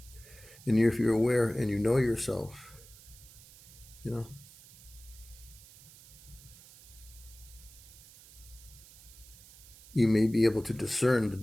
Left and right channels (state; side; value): noise; right; hiss, 21 dB below the sound